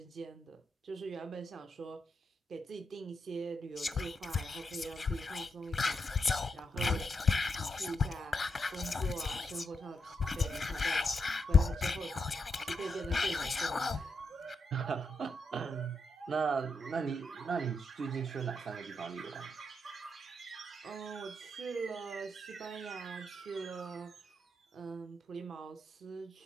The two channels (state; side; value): normal; both; correlation 0.83